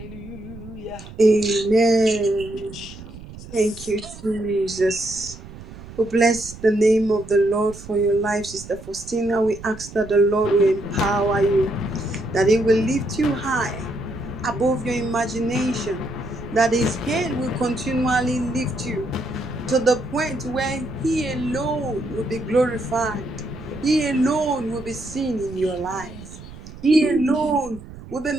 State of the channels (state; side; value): noise; right; rumble, 15 dB below the sound